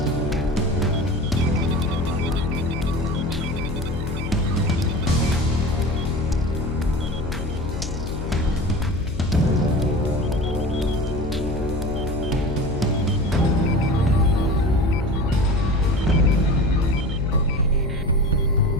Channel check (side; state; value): left; noise; hum, 5 dB below the sound